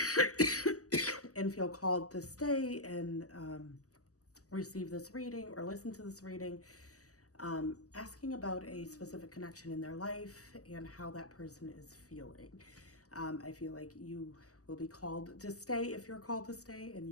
feel called to stay and receive this reading or listen to this reading, asking about a specific connection in their life and how that person is feeling. I feel like you will be called to stay if you're called to stay, and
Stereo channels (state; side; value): late; right; 0.66 ms